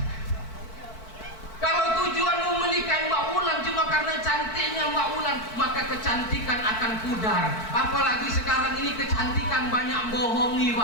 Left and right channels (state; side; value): late; right; 4.5 ms